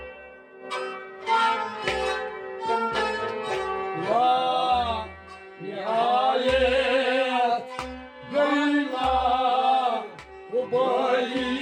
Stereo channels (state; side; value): identical; both; correlation 1.00